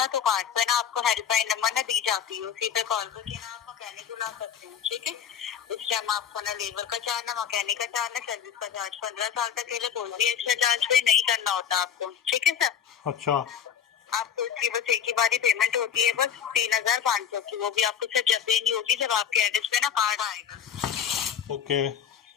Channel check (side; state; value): right; quieter; 8.5 dB